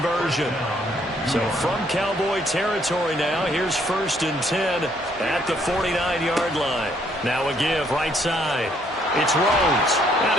So from Cowboy territory now, here's 1st and 10 at the 49-yard line. Now a give right side. It's Rhodes.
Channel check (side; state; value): both; normal; correlation 0.68